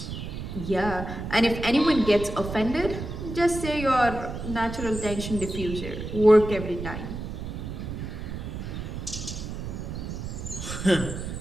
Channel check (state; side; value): noise; right; rumble, 7 dB below the sound